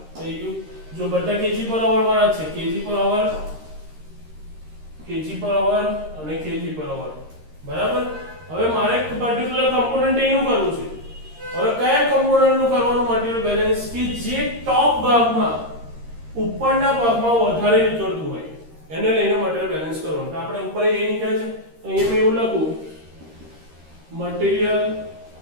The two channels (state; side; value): late; left; 13 ms